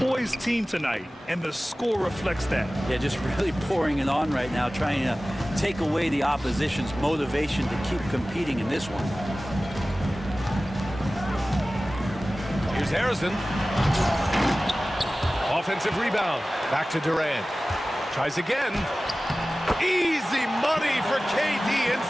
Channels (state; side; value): normal; both; correlation 0.97